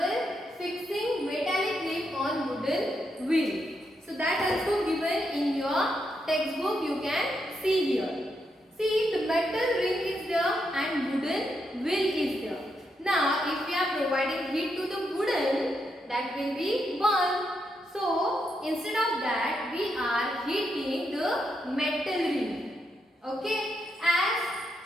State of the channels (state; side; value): normal; both; correlation 0.81